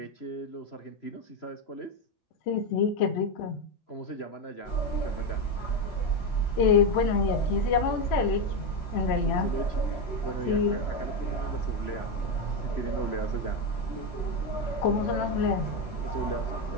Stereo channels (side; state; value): right; late; 3.0 ms